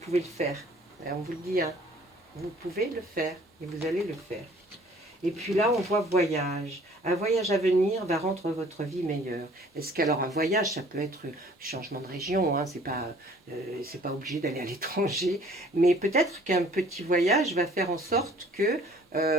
le faire. On vous le dit, hein, vous pouvez le faire et vous allez le faire. Et puis là, on voit voyage. Un voyage à venir va rendre votre vie meilleure. Est-ce qu'alors un voyage, ça peut être changement de région, hein, c'est pas obligé d'aller à l'étranger, mais peut-être qu'un petit voyage va faire en sorte que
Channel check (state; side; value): normal; both; correlation 0.54